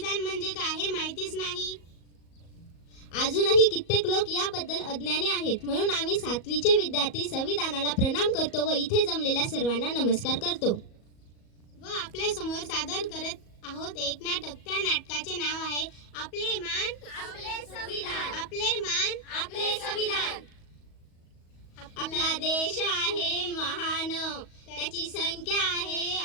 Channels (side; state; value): right; late; 37 ms